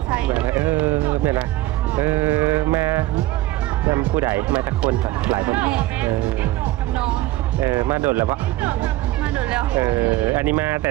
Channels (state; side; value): quieter; left; 16.9 dB